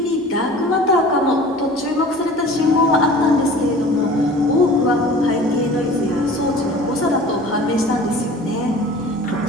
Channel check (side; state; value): both; normal; correlation 0.43